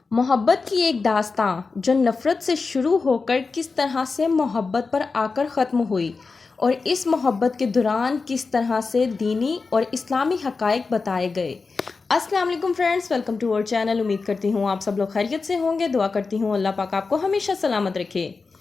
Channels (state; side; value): quieter; right; 4.3 dB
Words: محبت کی ایک داستاں جو نفرت سے شروع ہو کر کس طرح سے محبت پر آ کر ختم ہوئی، اور اس محبت کے دوران کس طرح سے دینی اور اسلامی حقائق بتائے گئے۔ السلام علیکم فرینڈز، ویلکم ٹو اور چینل۔ امید کرتی ہوں آپ سب لوگ خیریت سے ہوں گے۔ دعا کرتی ہوں اللہ پاک آپ کو ہمیشہ سلامت رکھے۔